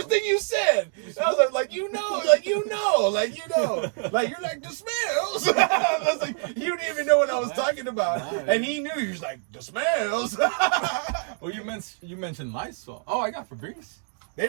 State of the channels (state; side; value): silent; left; 57 dB below the other